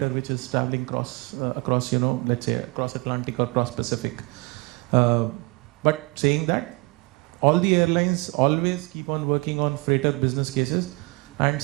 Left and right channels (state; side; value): quieter; left; 26.9 dB